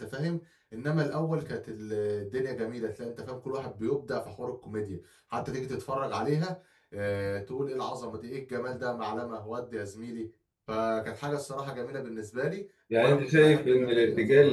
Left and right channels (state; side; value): identical; both; correlation 1.00